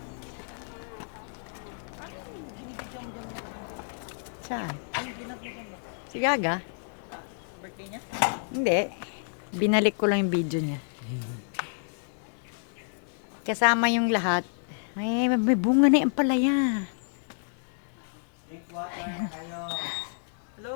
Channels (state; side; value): silent; right; digital silence